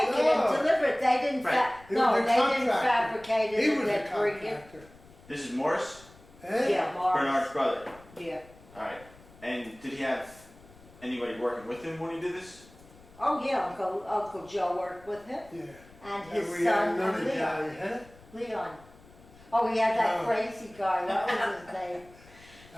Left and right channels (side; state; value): left; noise; rumble, 24 dB below the sound